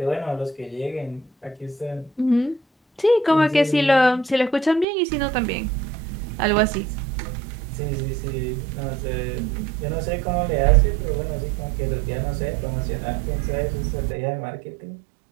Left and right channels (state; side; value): drops out; left; at 4.9 s